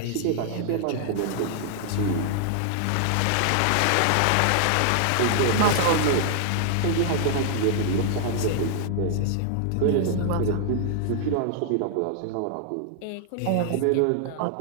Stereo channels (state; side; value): different; both; correlation 0.00